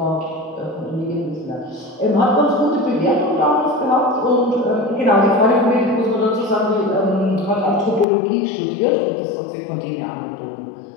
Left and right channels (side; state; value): right; drops out; at 8.1 s